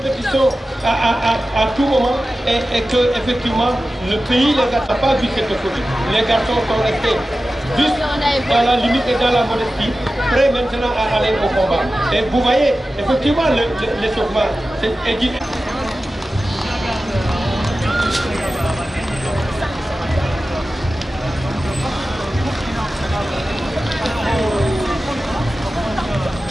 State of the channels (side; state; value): both; normal; correlation 0.94